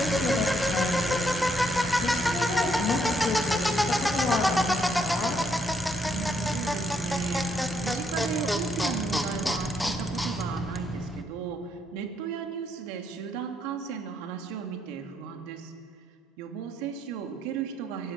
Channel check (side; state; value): both; normal; correlation 0.75